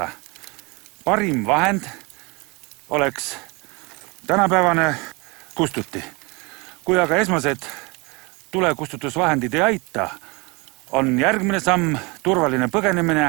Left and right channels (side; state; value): left; quieter; 27.6 dB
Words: Parim vahend oleks tänapäevane kustuti. Kui aga esmased tulekustutusvahendid ei aita, on järgmine samm turvaline